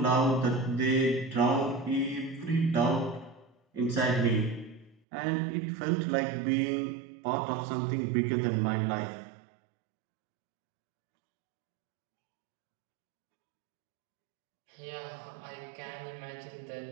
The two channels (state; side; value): drops out; left; at 5.0 s